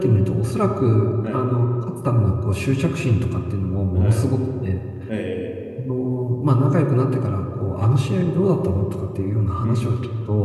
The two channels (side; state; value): both; identical; correlation 1.00